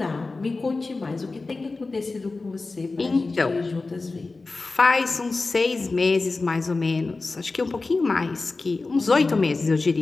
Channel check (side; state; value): right; quieter; 3.6 dB